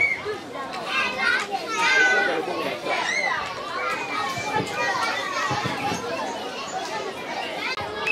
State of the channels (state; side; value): identical; both; correlation 1.00